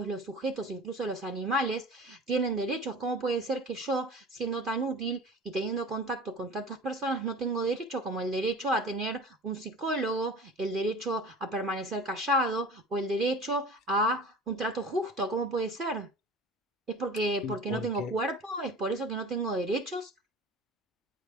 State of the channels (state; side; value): normal; both; correlation 0.38